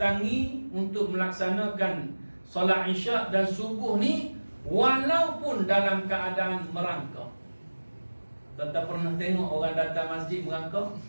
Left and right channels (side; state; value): both; inverted; correlation -1.00